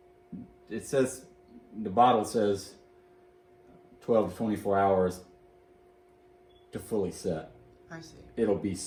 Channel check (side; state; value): both; identical; correlation 1.00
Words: it says the bottle says 12 to 24 hours to fully set. I see. It'll be